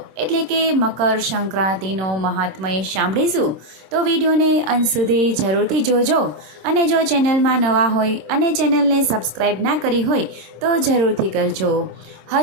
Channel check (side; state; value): left; late; 26 ms